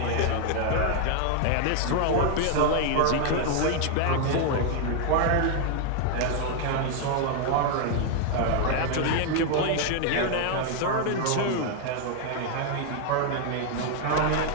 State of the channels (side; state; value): both; different; correlation 0.00